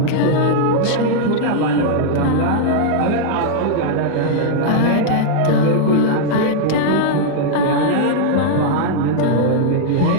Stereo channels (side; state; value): both; different; correlation -0.01